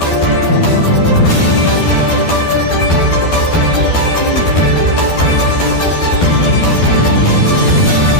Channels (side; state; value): right; late; 12 ms